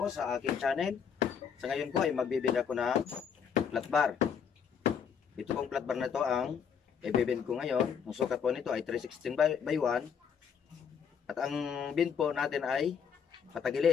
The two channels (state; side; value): quieter; right; 7.2 dB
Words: sa aking channel. Sa ngayon po ay magbibigay ako ng flat bar. Ito pong flat bar na to ang ibibend ko ngayon. Ang sukat po nito ay 316 by 1. At ang bend po natin ay